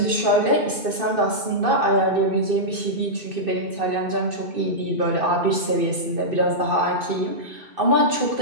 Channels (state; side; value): late; left; 2.6 ms